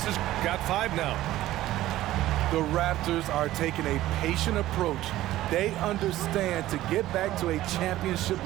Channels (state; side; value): quieter; left; 15.1 dB